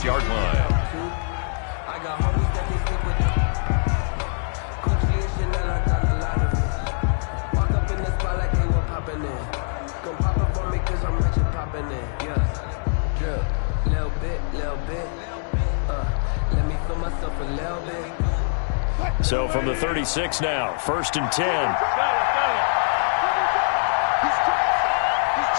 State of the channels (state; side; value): silent; right; digital silence